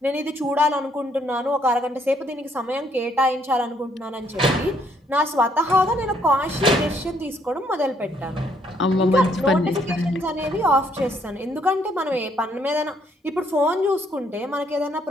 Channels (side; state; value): both; normal; correlation 0.69